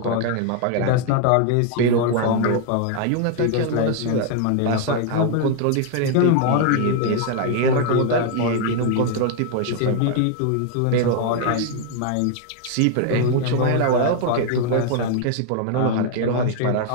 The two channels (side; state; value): both; different; correlation 0.00